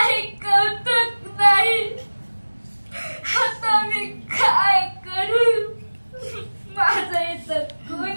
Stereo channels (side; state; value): both; inverted; correlation -1.00